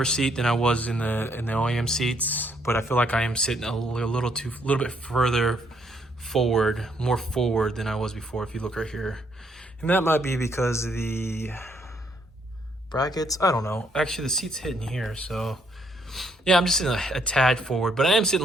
seat than I was in the OEM seats, but I feel like I am sitting a little bit further forward, more forward than I was before. If you look right here And that might be because of the brackets. I don't know. Actually, the seat's hitting here, so yeah, I'm just sitting a tad forward, but I am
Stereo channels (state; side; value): normal; both; correlation 0.71